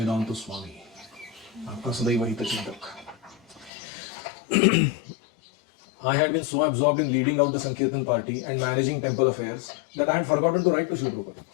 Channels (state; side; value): drops out; right; at 3.7 s